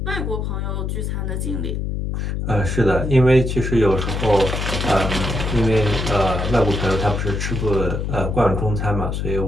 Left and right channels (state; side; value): noise; left; hum, 2 dB below the sound